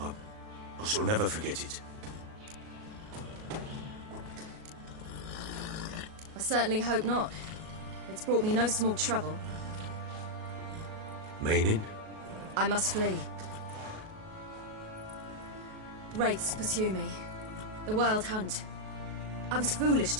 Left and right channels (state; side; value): late; left; 37 ms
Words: I shall never forget it. I certainly hope not. It's brought me no small trouble. Meaning? I must flee. Wraiths pursue me. The Wild Hunt. I was foolish